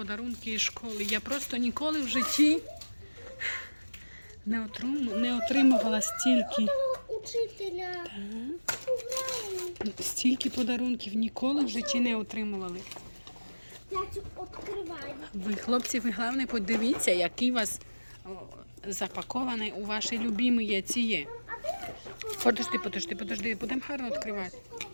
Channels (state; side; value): inverted; both; correlation -1.00